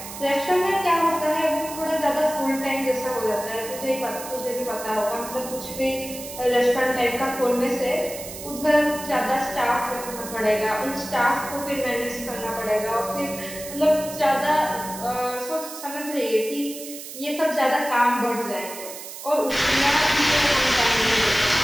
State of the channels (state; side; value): noise; right; hiss, 11 dB below the sound